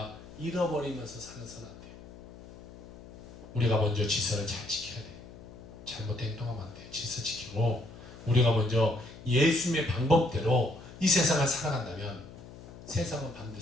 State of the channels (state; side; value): noise; left; hum, 17 dB below the sound